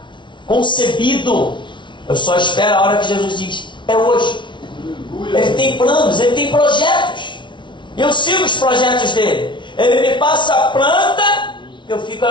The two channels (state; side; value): late; right; 0.24 ms